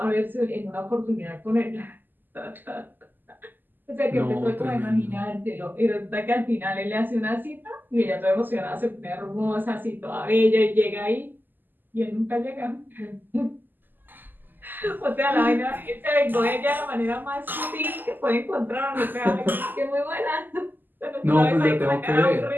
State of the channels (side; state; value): left; late; 0.089 ms